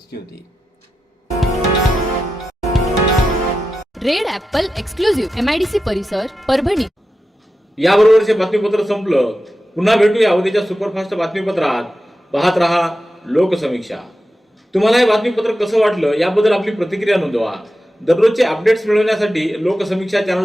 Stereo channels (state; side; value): normal; both; correlation 0.91